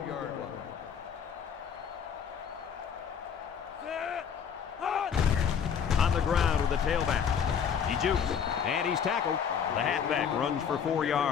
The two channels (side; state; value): right; quieter; 7.4 dB